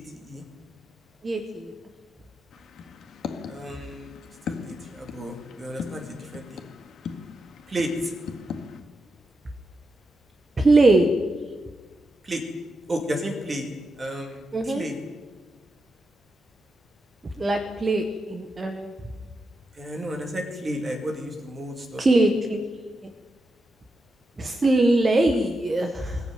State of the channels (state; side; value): normal; both; correlation 0.87